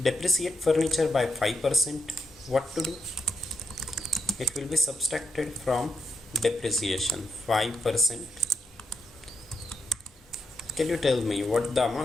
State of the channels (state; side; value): normal; both; correlation 0.83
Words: depreciate furniture by 5%. What to do? It will be subtracted from depreciation, 5%. Can you tell me what the